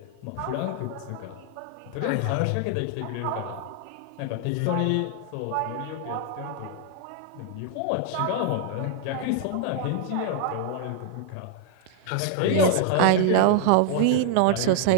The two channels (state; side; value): different; both; correlation 0.00